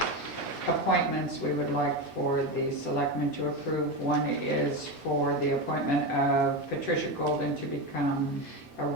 appointments we would like for the selectmen to approve. One is for the appointment of Patricia Golden to become a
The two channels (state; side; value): normal; both; correlation 0.16